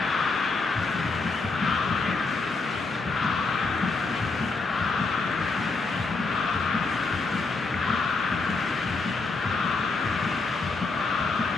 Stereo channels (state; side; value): quieter; right; 3.9 dB